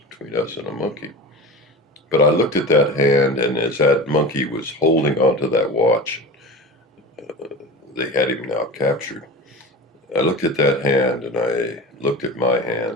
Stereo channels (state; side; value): normal; both; correlation 0.30